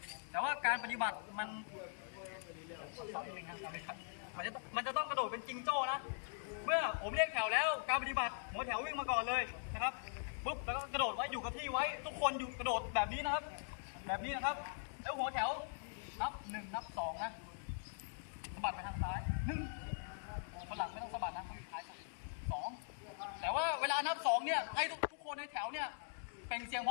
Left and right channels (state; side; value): silent; right; digital silence